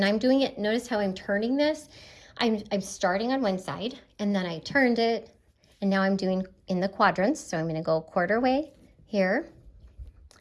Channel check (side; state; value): both; identical; correlation 1.00